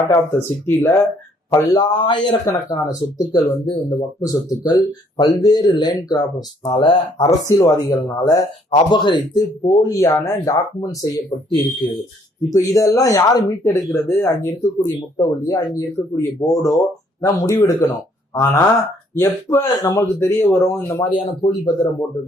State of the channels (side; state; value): both; normal; correlation 0.65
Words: ஆஃப் த சிட்டியில பல்லாயிரக்கணக்கான சொத்துக்கள் வந்து இந்த வக்ஃப் சொத்துக்கள் பல்வேறு லேண்ட் கிராபர்ஸ்னால, அரசியல்வாதிகள்னால அபகரித்து போலியான டாக்குமெண்ட் செய்யப்பட்டு இருக்கு. இப்ப இதெல்லாம் யாரு மீட்டெடுக்கிறது? அங்க இருக்கக்கூடிய முத்தவல்லியோ, அங்க இருக்கக்கூடிய போர்டோ தான் முடிவெடுக்கணும். ஆனா எப்ப நமக்கு தெரிய வரும் இந்த மாதிரியான போலி பத்திரம்